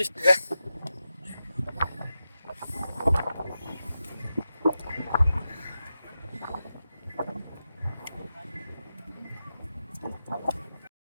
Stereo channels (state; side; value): inverted; both; correlation -0.90